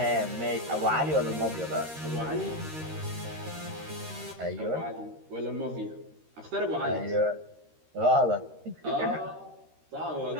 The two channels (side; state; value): left; late; 13 ms